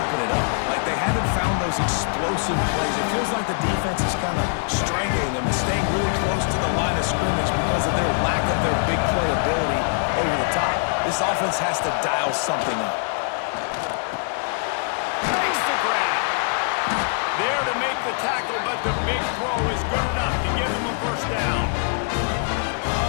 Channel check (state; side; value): silent; right; digital silence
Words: it up. Like, they haven't found those explosive plays. It feels like the defense is kind of strangling them and staying really close to the line of scrimmage because of their lack of their big play ability over the top. This offense has to dial something up. Makes the grab. There to make the tackle, but the big throw is good enough to give him a first down.